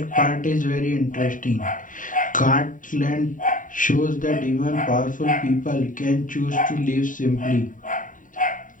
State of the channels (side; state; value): right; late; 0.38 ms